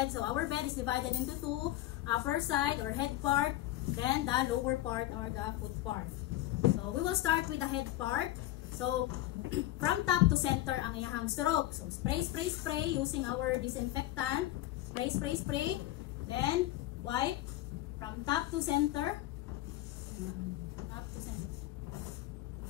So, our bed is divided into two, upper side or head part, then the lower part or the foot part. So, we will start with the head part. So, from top to center ang iyahang stroke. So, spray, spray, spray using our disinfectant. Spray, spray, spray. Then, wipe from top to center. Top to center.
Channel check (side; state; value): right; quieter; 15.5 dB